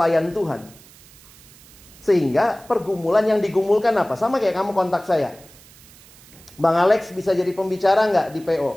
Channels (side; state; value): right; noise; hiss, 24 dB below the sound